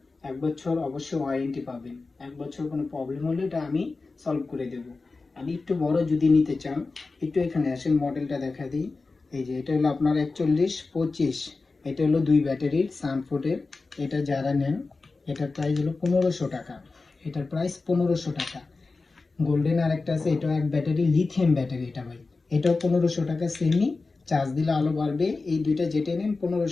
1 বছর অবশ্যই ওয়ারেন্টি পাবেন। 1 বছর কোনো প্রবলেম হলে এটা আমি সলভ করে দেব। আমি একটু বড় যদি নিতে চান, একটু এখানে আসেন, মডেলটা দেখা দিই। এই যে এটা হলো আপনার 4125। এটা হলো 2 ব্যাটারির সানফুডের। এটা যারা নেন, এটার প্রাইস হলো 1500 টাকা। এটার প্রাইস 1500 টাকা। গোল্ডেন আরেকটা আছে, এটা এক ব্যাটারি, লিথিয়াম ব্যাটারি। এটা ভাই, এটাও 1500 টাকা সেমি। চার্জ দিলে আলো বাড়বে। এই দুইটা যেটা নেন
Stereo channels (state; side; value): quieter; right; 3.8 dB